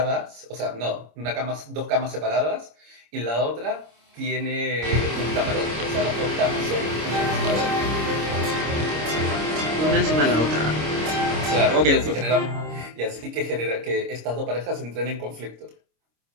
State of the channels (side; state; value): left; late; 26 ms